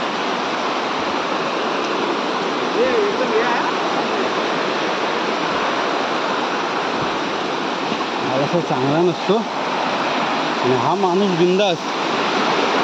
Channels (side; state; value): both; identical; correlation 1.00